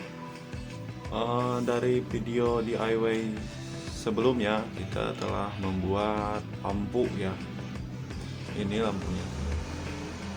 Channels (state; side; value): identical; both; correlation 1.00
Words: Dari video DIY sebelumnya kita telah membuat lampu ya. Ini lampunya.